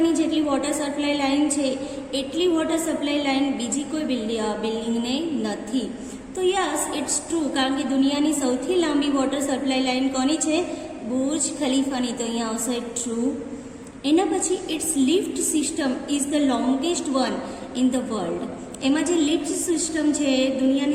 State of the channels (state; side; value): identical; both; correlation 1.00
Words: જેટલી વોટર સપ્લાય લાઇન છે એટલી વોટર સપ્લાય લાઇન બીજી કોઈ બિલ્ડિંગને નથી. તો યસ, ઇટ્સ ટ્રુ, કારણ કે દુનિયાની સૌથી લાંબી વોટર સપ્લાય લાઇન કોની છે? બુર્જ ખલીફાની. તો અહીંયા આવશે ટ્રુ. એના પછી its lift system is the longest one in the world. એમાં જે લિફ્ટ સિસ્ટમ છે